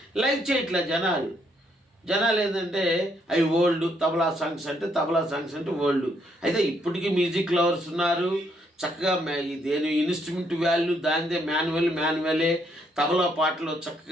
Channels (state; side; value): normal; both; correlation 0.72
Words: లైక్ చేయట్లే జనాలు ఏంటంటే అవి ఓల్డ్ తబలా సాంగ్స్ అంటే ఓల్డ్. అయితే ఇప్పటికీ మ్యూజిక్ లవర్స్ ఉన్నారు, చక్కగా దేని ఇన్స్ట్రుమెంట్ వాల్యూ దానిదే, మాన్యువలే. తబలా పాటలో